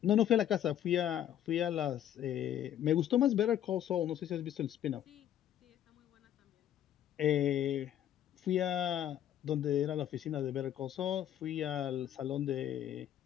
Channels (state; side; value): quieter; right; 11.0 dB